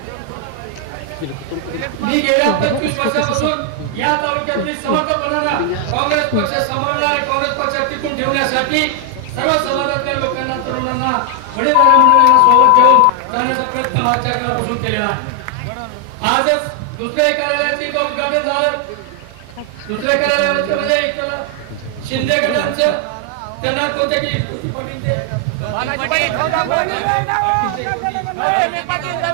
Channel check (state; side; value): different; both; correlation 0.00